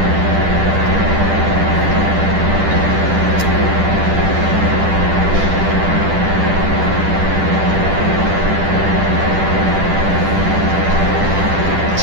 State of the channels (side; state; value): left; late; 10 ms